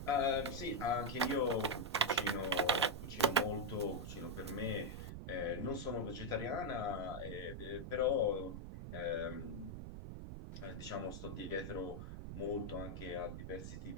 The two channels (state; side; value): noise; right; rumble, 8 dB below the sound